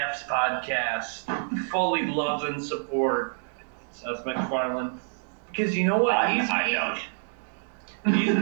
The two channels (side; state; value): left; silent; digital silence